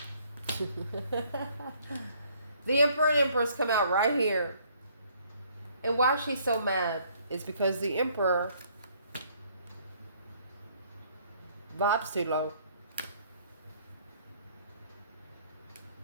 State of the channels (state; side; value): inverted; both; correlation -0.63